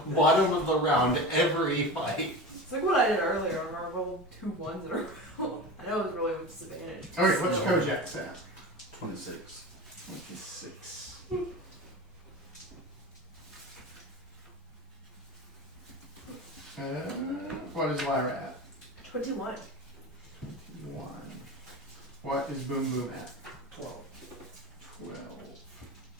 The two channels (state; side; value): normal; both; correlation 0.30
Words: bottom of the round every fight. It's like what I did earlier when I rolled 2 1s in a row. I know it was really with disadvantage. Okay, what's So- Kojak's at? 26. 26. What is Lyra at? 21. 1. What is Boom Boom at? 12. 12.